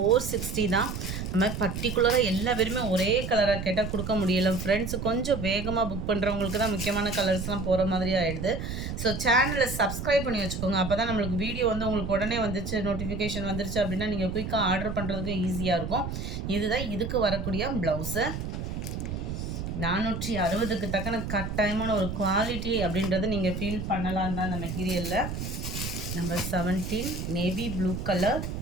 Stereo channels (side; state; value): right; noise; rumble, 5 dB below the sound